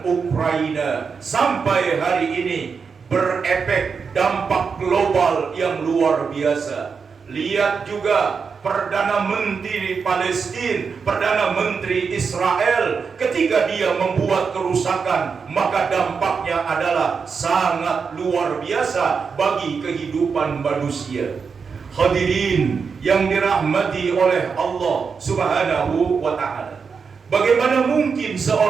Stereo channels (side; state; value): left; quieter; 5.6 dB